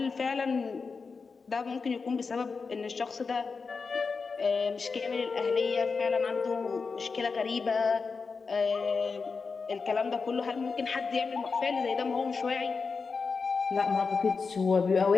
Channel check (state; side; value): quieter; right; 4.8 dB